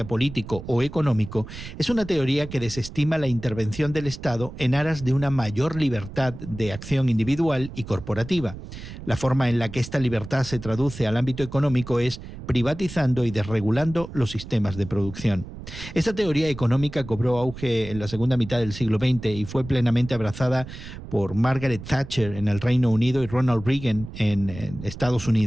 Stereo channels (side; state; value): right; noise; rumble, 12 dB below the sound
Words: político o económico, es una teoría que desestima la intervención del Estado en aras de una mayor libertad de acción individual y corporativa. La forma en la que esta libertad se traduce al ámbito económico es privatizando y desregulando los sistemas de producción. Esta teoría económica cobró auge en la segunda mitad del siglo XX y fue plenamente abrazada por Margaret Thatcher en el Reino Unido y Ronald Reagan en Estados